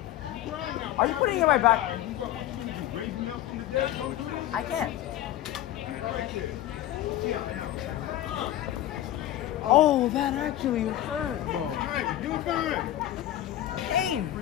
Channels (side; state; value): right; quieter; 13.2 dB